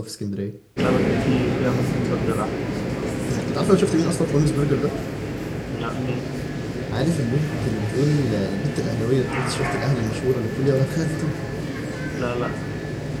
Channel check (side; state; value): both; identical; correlation 1.00